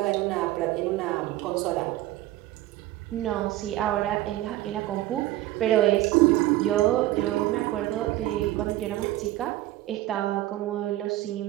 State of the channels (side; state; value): left; quieter; 15.7 dB